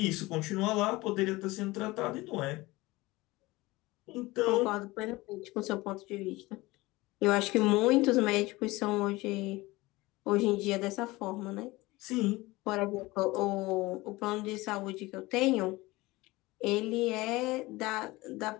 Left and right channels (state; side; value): quieter; right; 20.7 dB